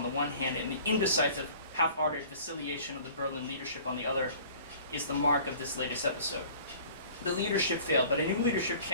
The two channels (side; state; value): both; inverted; correlation -0.48